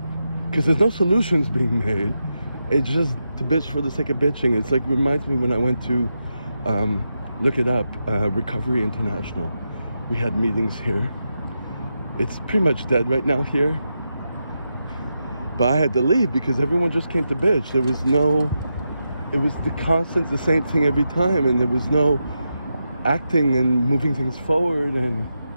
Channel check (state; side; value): inverted; both; correlation -0.86